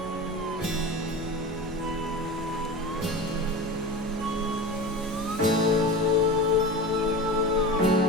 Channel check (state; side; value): normal; both; correlation 0.29